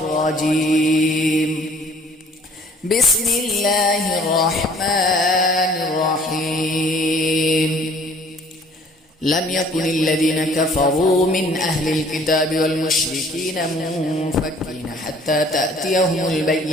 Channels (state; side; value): normal; both; correlation 0.55